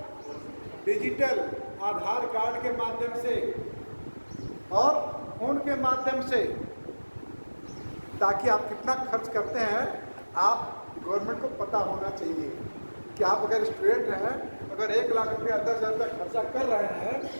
डिजिटल, आधार कार्ड के माध्यम से और फोन के माध्यम से, ताकि आप कितना खर्च करते हैं आप गवर्नमेंट को पता होना चाहिए कि आप अगर स्टूडेंट हैं, अगर 1 लाख रुपया 10,000 तक खर्चा कर रहे हैं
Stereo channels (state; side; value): inverted; both; correlation -1.00